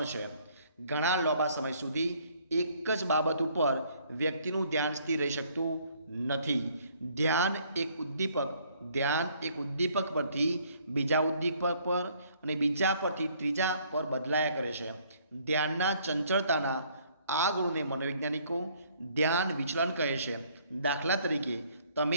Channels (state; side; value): inverted; both; correlation -0.63